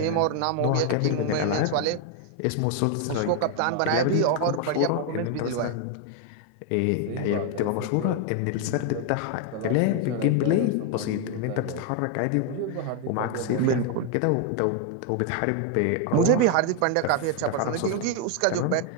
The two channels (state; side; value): different; both; correlation 0.01